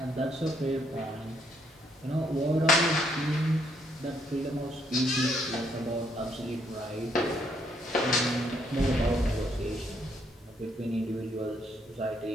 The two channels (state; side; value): normal; both; correlation 0.71